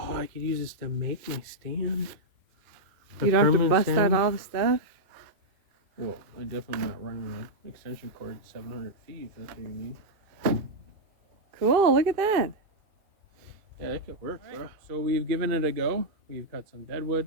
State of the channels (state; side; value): late; left; 2.5 ms